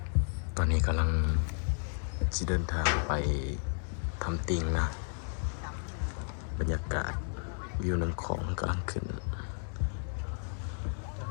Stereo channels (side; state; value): right; silent; 56 dB below the other